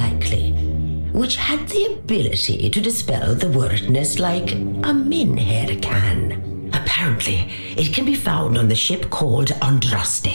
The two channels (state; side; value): inverted; both; correlation -1.00